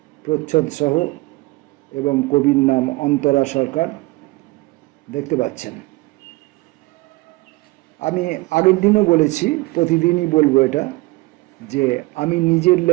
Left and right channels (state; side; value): quieter; left; 21.9 dB